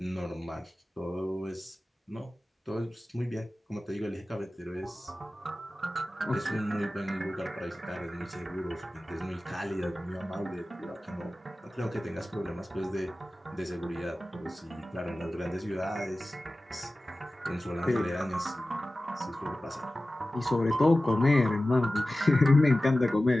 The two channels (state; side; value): normal; both; correlation 0.96